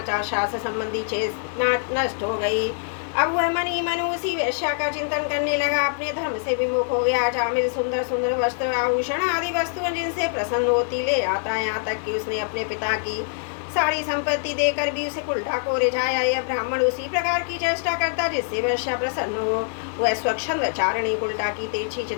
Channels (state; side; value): silent; right; digital silence